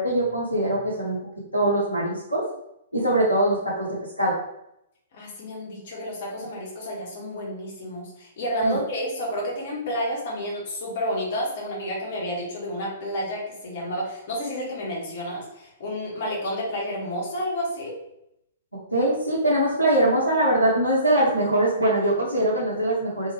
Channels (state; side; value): inverted; both; correlation -0.48